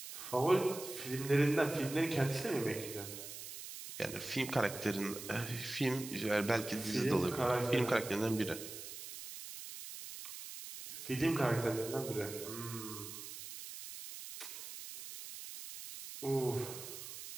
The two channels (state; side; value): noise; right; hiss, 10 dB below the sound